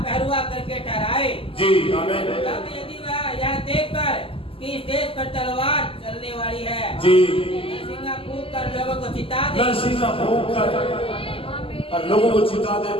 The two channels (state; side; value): late; right; 0.26 ms